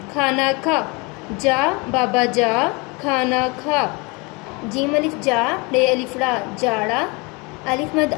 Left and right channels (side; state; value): right; quieter; 28.0 dB